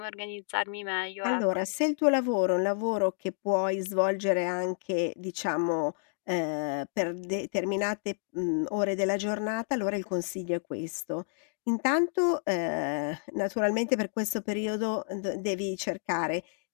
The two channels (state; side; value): silent; right; digital silence